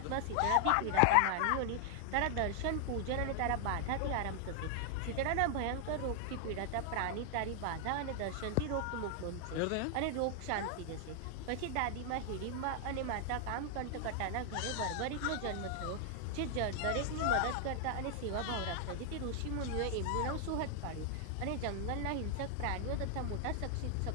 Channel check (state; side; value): different; both; correlation 0.00